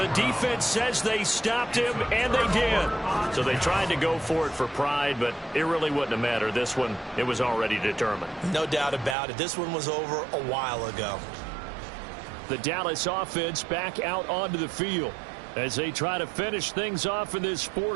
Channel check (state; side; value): drops out; left; at 9.2 s